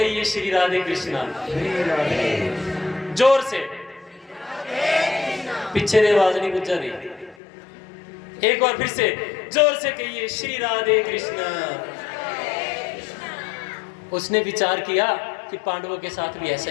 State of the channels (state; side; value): drops out; right; at 7.4 s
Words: श्री राधे कृष्णा, जोर से, पीछे दे आवाज नहीं गुजा दी, एक बार फिर से जोर से कहिए श्री राधे कृष्णा। उसने विचार किया कि पांडवों के साथ भी ऐसा